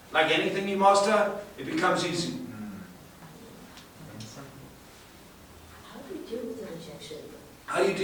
like anything you master, it becomes easy. How do you deal with the rejection? How do you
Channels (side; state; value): both; identical; correlation 1.00